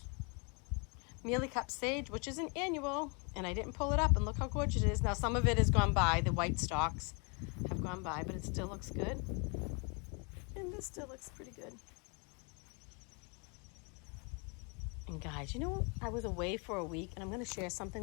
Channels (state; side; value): quieter; right; 34.5 dB